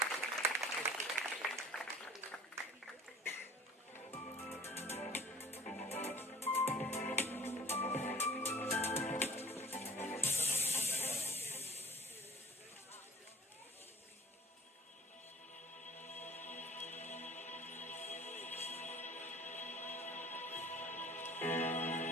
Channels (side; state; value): both; normal; correlation 0.47